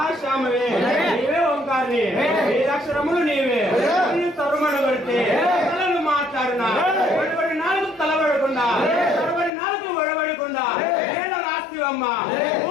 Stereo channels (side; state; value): right; drops out; at 9.5 s